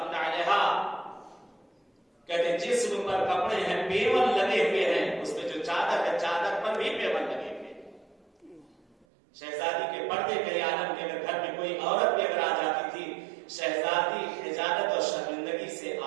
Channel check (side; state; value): left; drops out; at 9.1 s